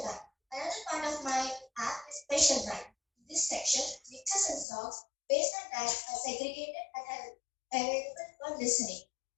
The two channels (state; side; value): drops out; right; at 4.7 s